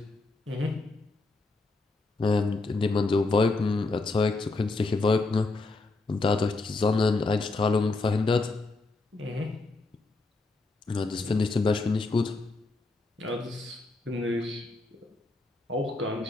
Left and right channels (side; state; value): right; quieter; 3.4 dB